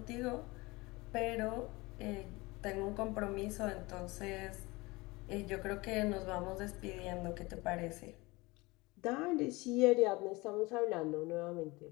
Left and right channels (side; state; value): right; quieter; 23.0 dB